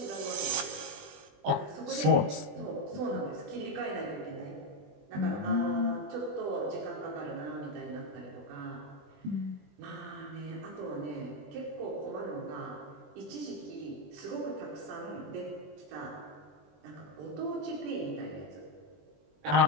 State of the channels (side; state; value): left; late; 20 ms